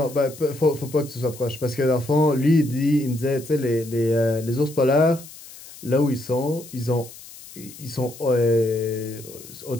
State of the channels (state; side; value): noise; left; hiss, 17 dB below the sound